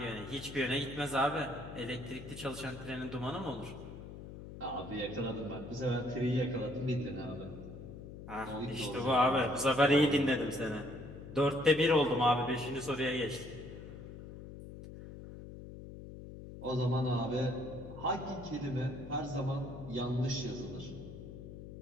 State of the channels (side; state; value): left; noise; hum, 12 dB below the sound